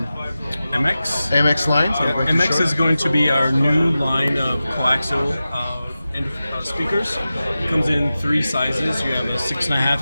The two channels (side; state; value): both; inverted; correlation -0.94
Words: MX line. So MX is going to be our new line of coaxial speakers. It comes in three sizes. You have a